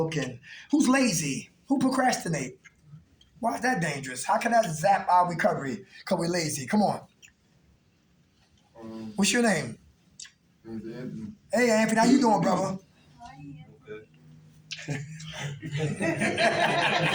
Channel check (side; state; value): both; identical; correlation 1.00